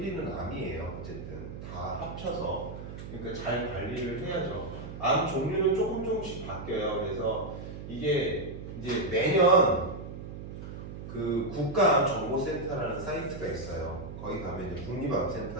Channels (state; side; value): noise; right; hum, 10 dB below the sound